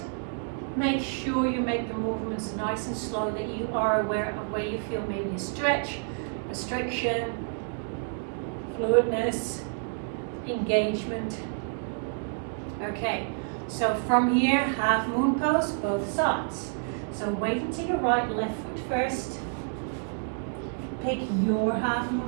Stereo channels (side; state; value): left; silent; 57 dB below the other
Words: make sure you make the movements nice and slow, that you are aware of where you feel maybe a stretch, restriction, fluidness, engagement. Okay, so from here, half moon pose, both sides. So weight into your right, left foot first. Pick your half